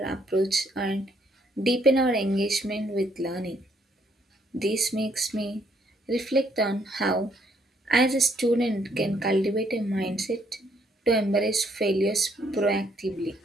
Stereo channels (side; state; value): both; normal; correlation 0.69